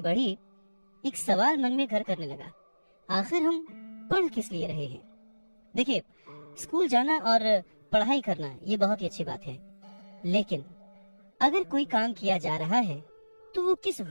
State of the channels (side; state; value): both; inverted; correlation -1.00